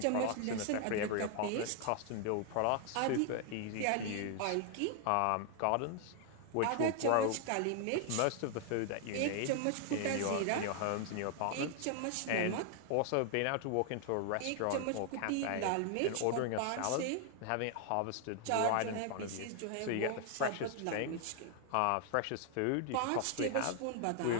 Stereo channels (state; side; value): different; both; correlation 0.00